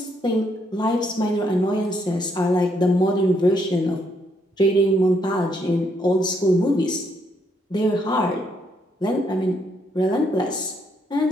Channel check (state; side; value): normal; both; correlation 0.74